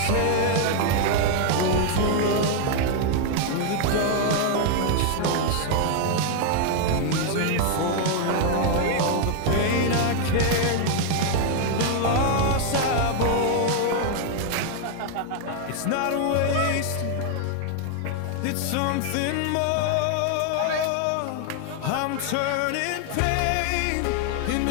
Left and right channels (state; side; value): different; both; correlation 0.00